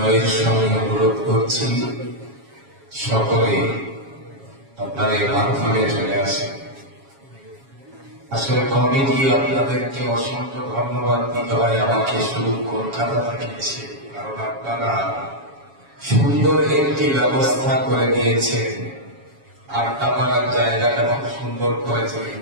সঙ্গে অনুরোধ করছি সকলে আপনার এই মাধ্যমে চলে আসে। আসলে কমিটি আপনাদেরকে অসংখ্য ধন্যবাদ দিতে হয় আমাকে শুধু কলকাতা থেকে এসে, কারণ আপনারা সুন্দর একটি ব্যবস্থা করে দিয়েছেন। আড্ডা মারার জায়গাটা খুব সুন্দর করেছে,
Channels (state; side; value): late; left; 7.3 ms